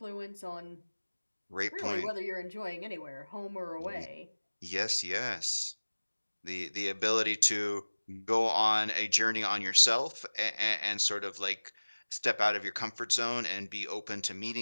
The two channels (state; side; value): inverted; both; correlation -1.00